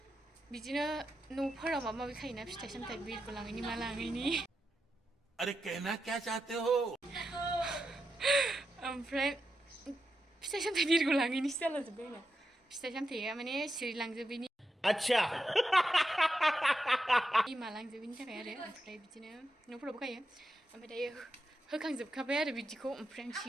बिदिनो न'फोराव माबा माबि खायोना फिथाइ सामथाइ बिरखौ लाङैनि मा लाङैनि. अरे कहना क्या चाहते हो ओमफ्राय फिथाइ सामथाइ बिरखौ लाङैनिसो जालाजोब्बाय आंना फिथाइ सामथाइया माने सिरिलांजोबैनि अच्छा मालांजोबैनि थाखाय आरो ओमफ्राय बिदिनो न'फोरावबो गायो ओमफ्राय दायो होखांजोबखाबाय आरो बिदिखौ ओमफ्राय आं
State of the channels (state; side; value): normal; both; correlation 0.87